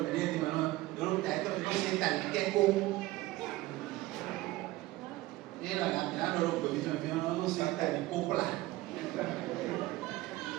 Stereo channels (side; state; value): left; quieter; 18.0 dB